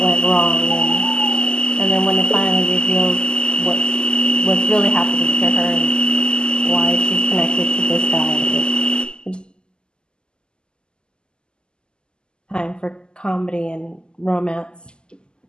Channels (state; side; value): late; right; 0.047 ms